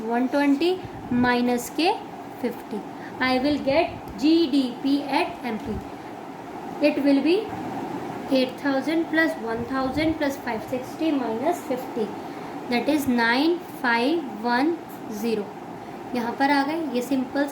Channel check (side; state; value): both; identical; correlation 1.00